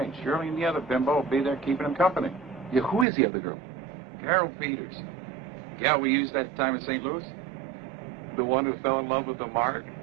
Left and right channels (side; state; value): left; drops out; at 3.1 s